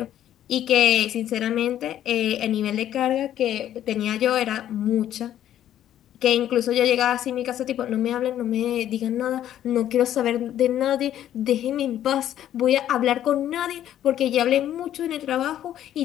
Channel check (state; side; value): quieter; right; 11.5 dB